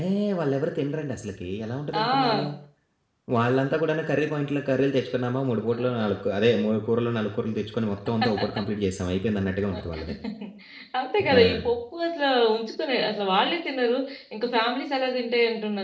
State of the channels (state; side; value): identical; both; correlation 1.00